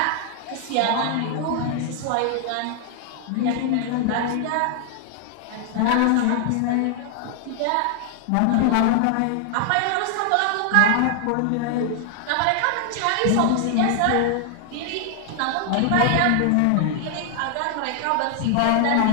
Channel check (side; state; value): both; different; correlation 0.00